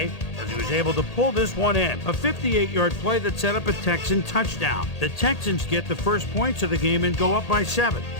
as he was able to pull this one in. A 58-yard play that set up a Texan touchdown. The Texans get the first points of the game and go up by 7.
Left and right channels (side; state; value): right; late; 1.8 ms